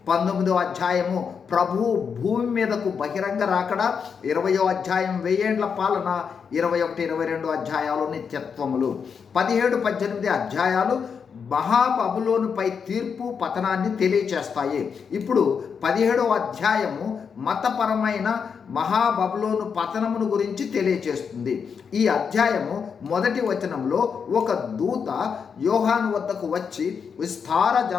19వ అధ్యాయము ప్రభు భూమి మీదకు బహిరంగ రాకడ, 20వ అధ్యాయం 1000 ఏండ్ల పాలన, 21-22 అధ్యాయాలు నిత్యత్వములు. 17-18 అధ్యాయాలు మహాబబులోనుపై తీర్పు, పతనాన్ని తెలియచేస్తాయి. ఇప్పుడు 17వ అధ్యాయము మతపరమైన మహాబబులోను పతనమును గురించి తెలియచేస్తుంది. ఈ అధ్యాయము మొదటి వచనంలో ఒక దూత యోహాను వద్దకు వచ్చి విస్తార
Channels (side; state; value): right; quieter; 6.4 dB